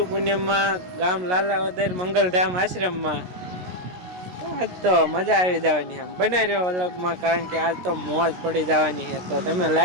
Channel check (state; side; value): late; left; 17 ms